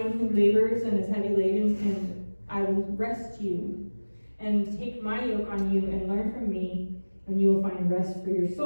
who labors and is heavy laden, and I will rest you. And take my yoke on you and learn from me, and you will find rest for your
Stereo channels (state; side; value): inverted; both; correlation -1.00